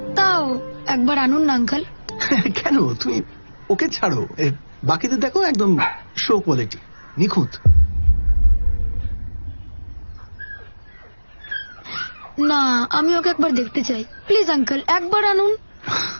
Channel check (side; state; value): both; inverted; correlation -1.00